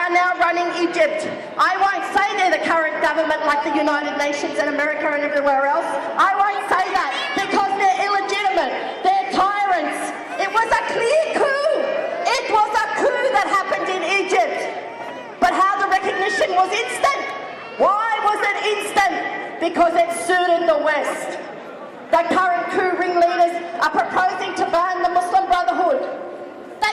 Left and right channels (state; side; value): identical; both; correlation 1.00